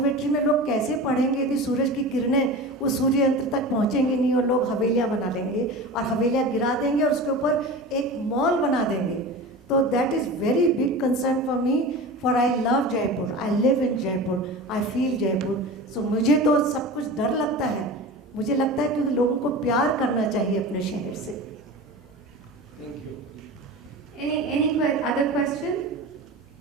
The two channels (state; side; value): normal; both; correlation 0.31